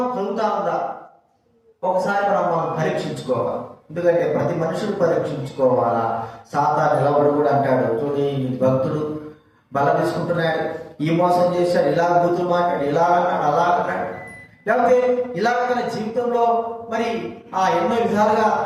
కలుగుతా ఉందా? ఒకసారి మనం పరీక్షించుకోవాలి. ఎందుకంటే ప్రతి మనుషులు పరీక్షించుకోవాలా. సాతాను నిలబడి కూడా అంటాడు, చూడండి భక్తుడు బల తీసుకుంటున్నాడు, ఈ మోసం చేశాడు, ఇలా బూతులు మాట్లాడు, ఇలా అన్నాడు, అలా అన్నాడు, లేకపోతే ఇలాగ తన జీవితంలో మరి ఎన్నో విధాలుగా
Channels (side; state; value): both; identical; correlation 1.00